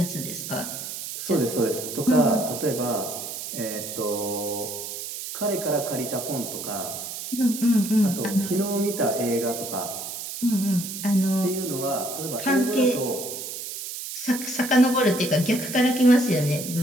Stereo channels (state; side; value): noise; right; hiss, 7 dB below the sound